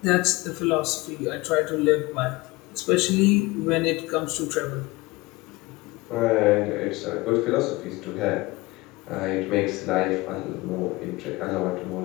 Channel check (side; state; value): right; quieter; 22.0 dB